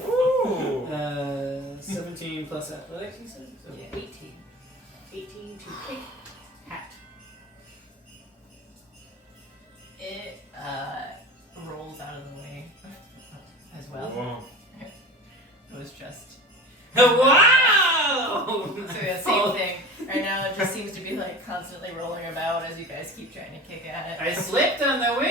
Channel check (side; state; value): both; normal; correlation 0.35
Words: Ooh. 17 plus athletics, you said? So Yeah. 18. 18 to kick hat. It rolls out of the way as well. Whoa. It was just Wow! so yeah, same thing. Right now it just seems to be like constantly rolling about as you guys keep trying to kick at I it. slipped on the